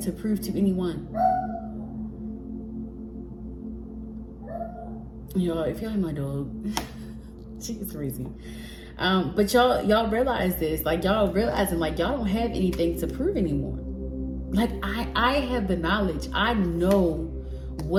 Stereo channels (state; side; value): identical; both; correlation 1.00